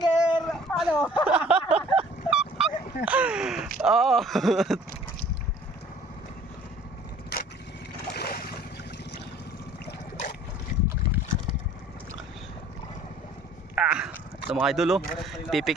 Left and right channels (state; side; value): normal; both; correlation 0.53